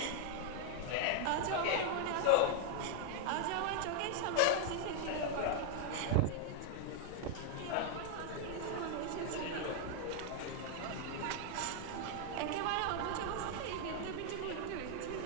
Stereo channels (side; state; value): both; different; correlation 0.00